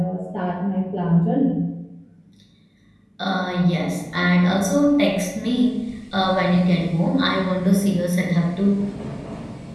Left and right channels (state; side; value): identical; both; correlation 1.00